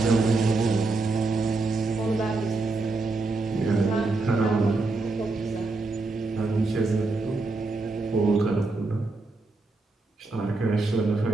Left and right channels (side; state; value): left; quieter; 3.5 dB